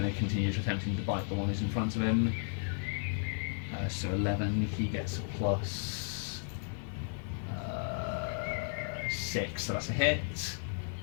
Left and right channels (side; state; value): right; silent; 55 dB below the other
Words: to continue attempting to bite the one who's in front of him. So 11. He gets a plus 6, so that's a hit.